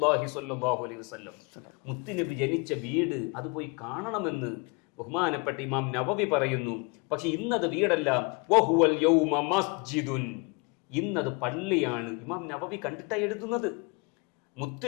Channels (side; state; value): right; quieter; 30.1 dB